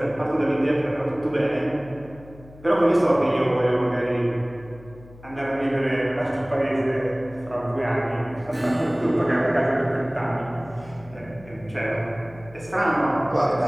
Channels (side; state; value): left; noise; hum, 20 dB below the sound